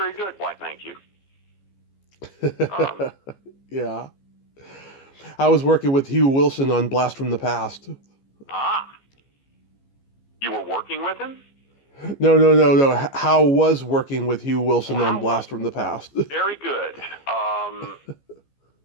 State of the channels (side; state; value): right; late; 15 ms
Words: good." Why, thank you. Yeah. I was working with Hugh Wilson on Blast from the Past. You were working with him? No. How was working with Hugh Wilson on Blast from the Past? Very good.